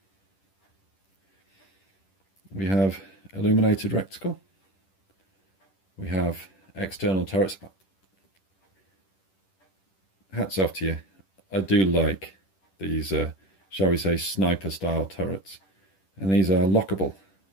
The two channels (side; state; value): right; late; 10 ms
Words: We have illuminated reticle. We have external turrets. Hats off to you. I do like these, shall we say, sniper style turrets. And these are lockable